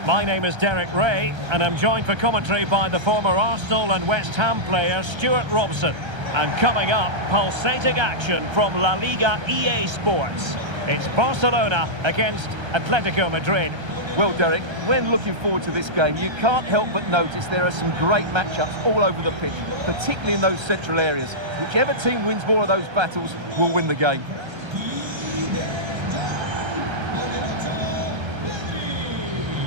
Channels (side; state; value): left; late; 1.3 ms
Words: My name is Derek Ray, and I'm joined for commentary by the former Arsenal and West Ham player Stuart Robson. And coming up, pulsating action from La Liga EA Sports. It's Barcelona against Atletico Madrid. Well, Derek, when looking forward to this game, you can't help but notice there are some great matchups all over the pitch, particularly in those central areas. Whichever team wins more of those battles will win the game.